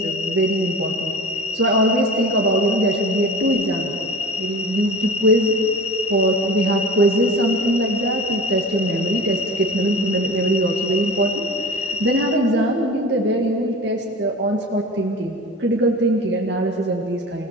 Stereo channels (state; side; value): normal; both; correlation 0.36